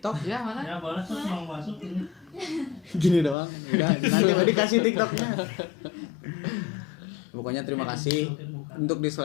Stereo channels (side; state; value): right; drops out; at 3.4 s